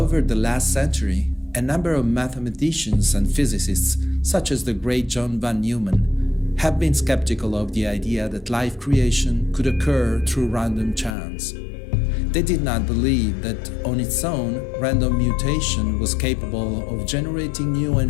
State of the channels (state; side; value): drops out; right; at 11.2 s